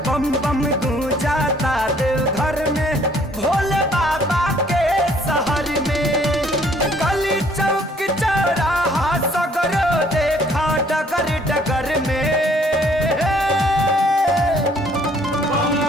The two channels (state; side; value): normal; both; correlation 0.61